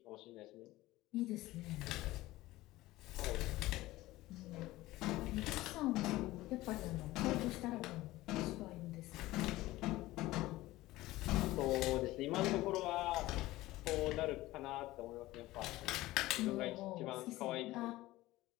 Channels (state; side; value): quieter; right; 17.7 dB